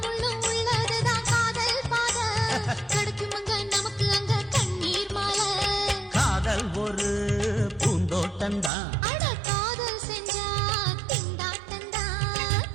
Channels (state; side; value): drops out; left; at 8.7 s